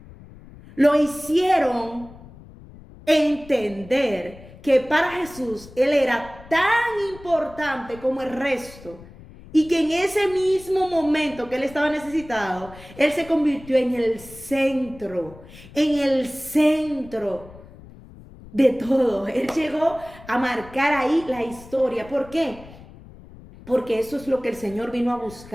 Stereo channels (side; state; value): left; noise; rumble, 19 dB below the sound